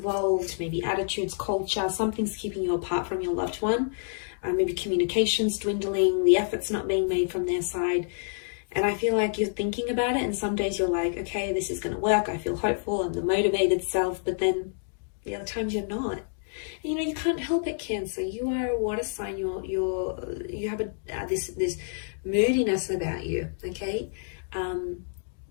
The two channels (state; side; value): silent; right; digital silence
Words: maybe attitudes, culture, something's keeping you apart from your loved one. Maybe communication's dwindling, the effort's not being made from their side. And I feel like you're thinking about it, and some days you're like, okay, this is going to work. I feel hopeful. I'm the motivated self. But then the other times you're not. And, you know, you can't help it, Cancer. You are a water sign. You have this moodiness about you. Okay.